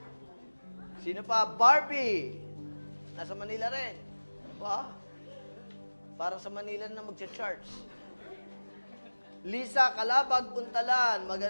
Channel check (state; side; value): inverted; both; correlation -1.00